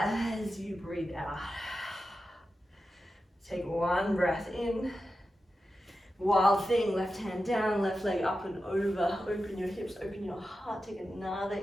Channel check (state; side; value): normal; both; correlation 0.91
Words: as you breathe out. Take 1 breath in. Wild thing, left hand down, left leg up and over. Open your hips, open your heart. Take another